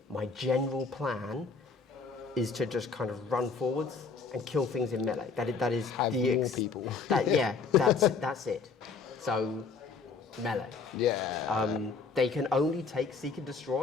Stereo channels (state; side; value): quieter; right; 4.8 dB